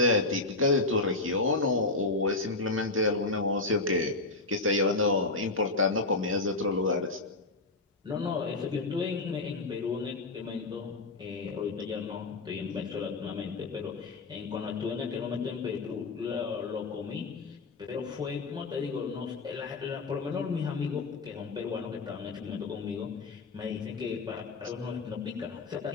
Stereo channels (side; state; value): right; quieter; 3.4 dB